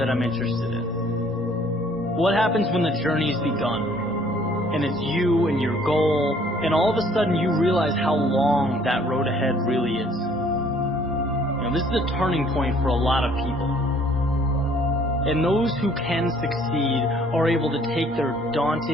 I'm interested in. What happens when the journey's begun? And it's you and your goal, and all of a sudden you realize how long that road ahead really is. This is a turning point for a lot of people. And those who can succeed are able to take their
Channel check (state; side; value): normal; both; correlation 0.59